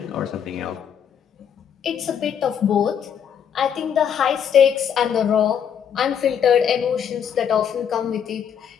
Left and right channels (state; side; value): quieter; right; 8.3 dB